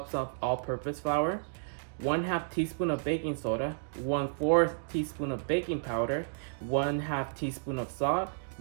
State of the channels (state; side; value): silent; left; digital silence